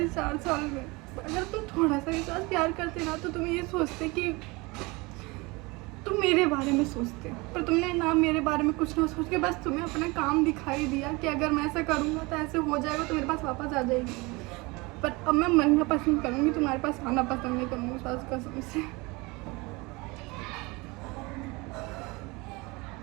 4 साल में। अगर तुम थोड़ा सा मेरे साथ प्यार करते ना तो तुम ये सोचते कि तुम मेरे बारे में सोचते, पर तुमने ना मेरे बारे में कुछ ना सोच के बस तुम्हें अपना काम दिखाई दिया कि अगर मैं ऐसा करूँगा तो ऐसे हो जाएगा, तो मेरे पास वापस आ जाएगी। पर अब मैं मरना पसंद करूँगी, तुम्हारे पास आना पसंद नहीं करूँगी सास कसम से।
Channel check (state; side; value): quieter; left; 25.0 dB